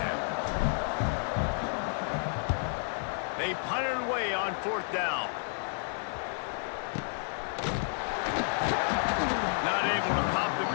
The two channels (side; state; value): right; silent; 57 dB below the other